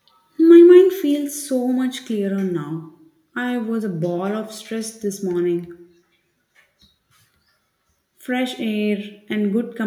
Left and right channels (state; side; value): identical; both; correlation 1.00